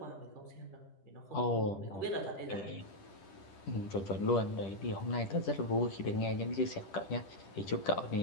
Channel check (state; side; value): late; right; 10 ms